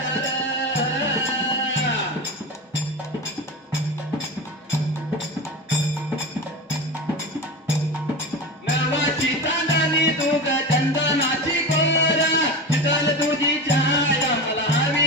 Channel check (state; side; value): normal; both; correlation 0.24